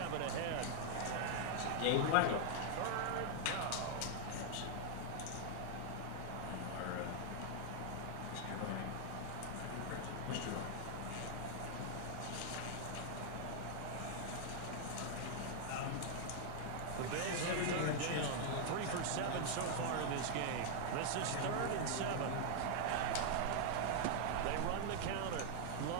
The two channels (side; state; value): both; different; correlation 0.00